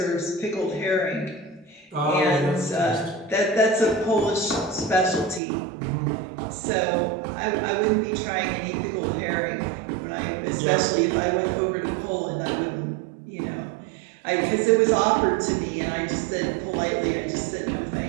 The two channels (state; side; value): drops out; left; at 5.4 s